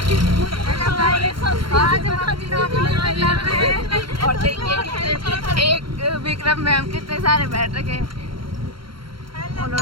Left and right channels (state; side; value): late; left; 0.73 ms